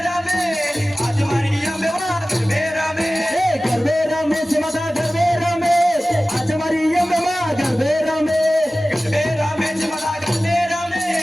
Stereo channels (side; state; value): both; normal; correlation 0.97